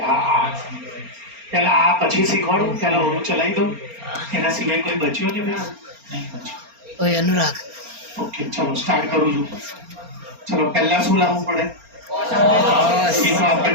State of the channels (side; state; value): left; late; 4.3 ms